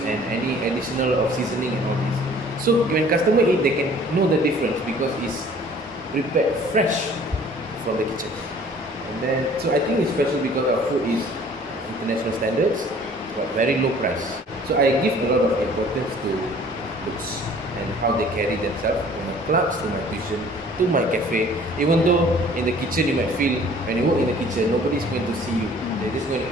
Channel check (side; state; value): both; normal; correlation 0.52